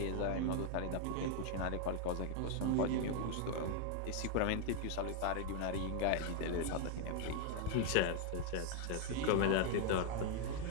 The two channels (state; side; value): different; both; correlation 0.00